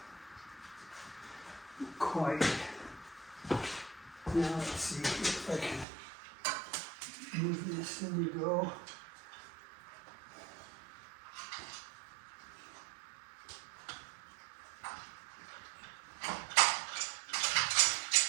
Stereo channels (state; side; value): drops out; left; at 5.9 s